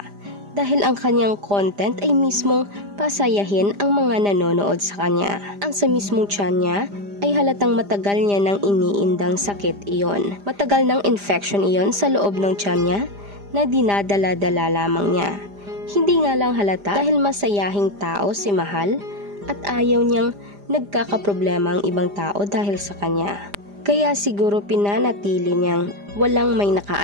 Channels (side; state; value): left; late; 5.0 ms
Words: dahil ang kanyang content ay mismong pasayahin ang mga nanonood sa kanya. Ang sa mismong tiyan niya ay halatang matagal niya nang iniindang sakit iyon. Matagal ng infection iyon sa loob ng tiyan niya na dinadala-dala lamang niya. Hindi nga lang halata dahil masayahing tao si Mahal at ayaw niyang nagkakaproblema ang ibang tao dahil sa kanya. Kaya siguro pinanatili niyang walang may